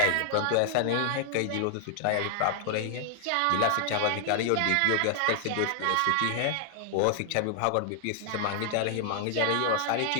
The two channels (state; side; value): different; both; correlation 0.00